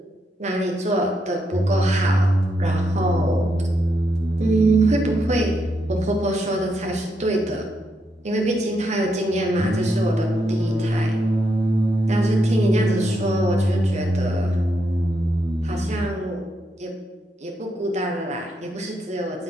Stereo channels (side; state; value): both; normal; correlation 0.80